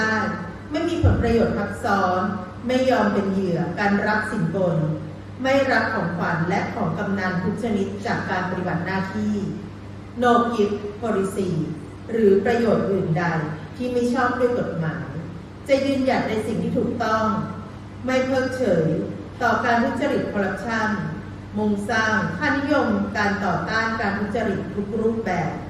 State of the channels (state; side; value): identical; both; correlation 1.00